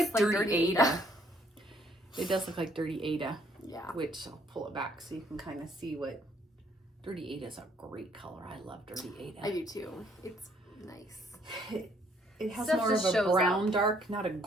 Dirty Ada. It does look like Dirty Ada. Yeah. Which I'll pull it back so you can kind of see what. Dirty Ada is a great color. I love Dirty Ada. I do too. It's nice. It has Stuff more of just a shows brown up. dark, not a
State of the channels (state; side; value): normal; both; correlation 0.66